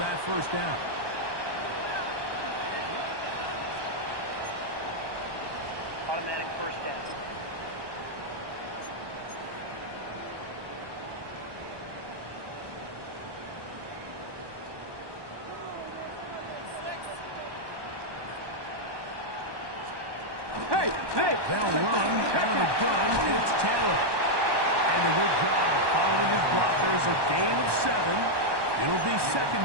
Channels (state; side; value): late; left; 1.2 ms